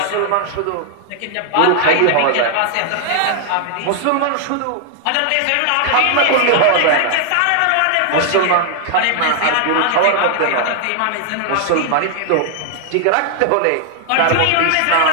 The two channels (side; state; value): both; different; correlation 0.00